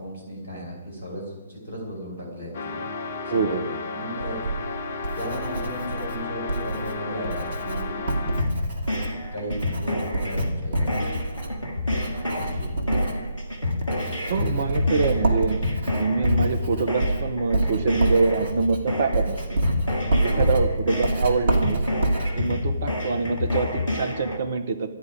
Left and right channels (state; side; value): inverted; both; correlation -0.76